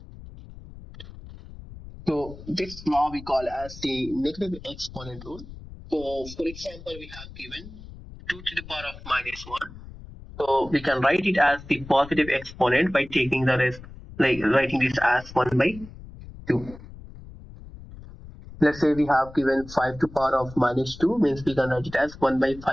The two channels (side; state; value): left; noise; rumble, 16 dB below the sound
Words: So this law we call as the negative exponent rule. So for example, we have given 2 to the power of minus 1. So we can write it as the positive exponent by taking the rest, like writing this as 1 by 2. Let's say we have given 5 to the power of minus 2, means we can write it as 1 by 5